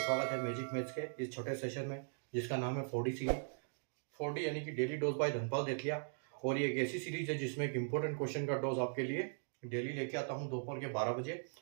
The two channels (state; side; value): silent; left; digital silence